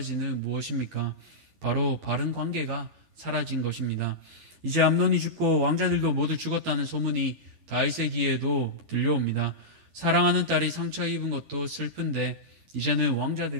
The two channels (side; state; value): left; late; 12 ms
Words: 무엇입니까? 바로 바른 관계가 사라진 것입니다. 이제 암논이 죽고 왕자들도 모두 죽었다는 소문이 다윗의 귀에도 들려옵니다. 사랑하는 딸이 상처 입은 것도 슬픈데 이제는